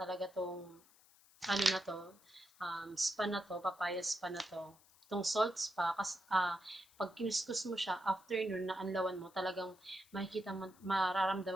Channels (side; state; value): left; noise; hiss, 27 dB below the sound